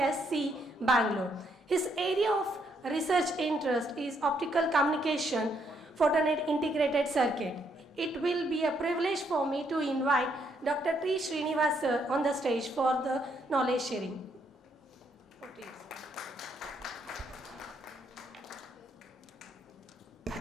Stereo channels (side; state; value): both; normal; correlation 0.73